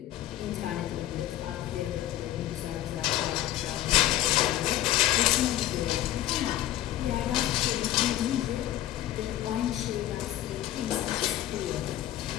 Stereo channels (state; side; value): quieter; right; 13.6 dB